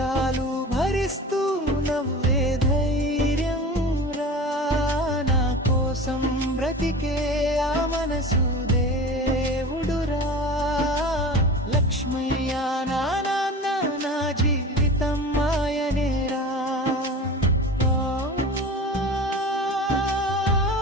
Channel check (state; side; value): normal; both; correlation 0.35